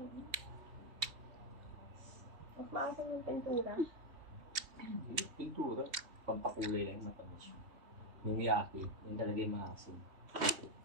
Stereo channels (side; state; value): left; late; 3.2 ms